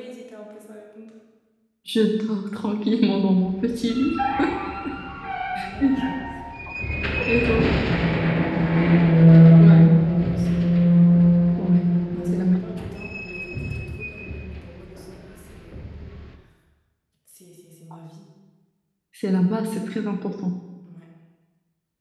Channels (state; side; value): identical; both; correlation 1.00